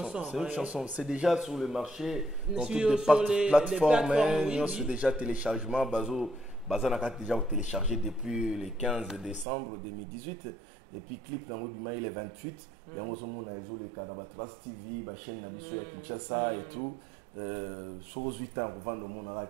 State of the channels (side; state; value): left; drops out; at 9.5 s